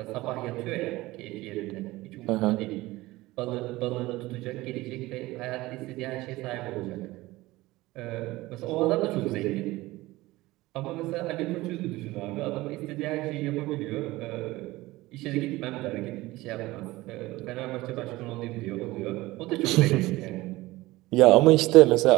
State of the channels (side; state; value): left; quieter; 19.0 dB